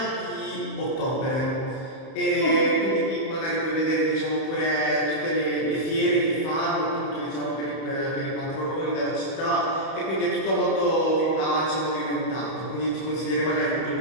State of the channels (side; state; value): right; late; 31 ms